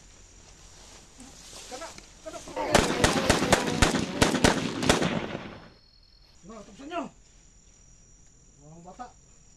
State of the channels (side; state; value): both; identical; correlation 1.00